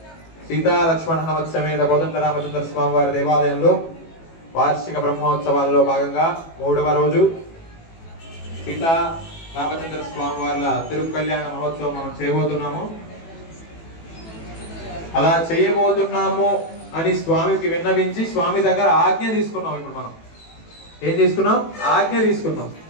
సీతా లక్ష్మణ హనుమత్ సమేత కోదండరామచంద్ర స్వామి వారి దేవాలయంలో వార్షిక బ్రహ్మోత్సవాల్లో భాగంగా 3వ రోజు సీతా రామచంద్ర స్వామి వారి తిరుకల్యాణ మహోత్సవం మనం చేయబోతున్నాము. అలా చేయబోతున్నాము అని స్వామికి విన్నవించి స్వామి దగ్గర ఆజ్ఞ తీసుకున్నాం. ఇప్పుడు మనం ఏం తీసుకున్నాం? ఆజ్ఞ తీసుకున్నాం.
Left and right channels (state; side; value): late; right; 18 ms